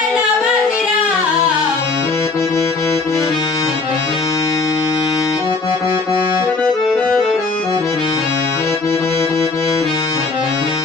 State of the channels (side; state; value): right; quieter; 3.9 dB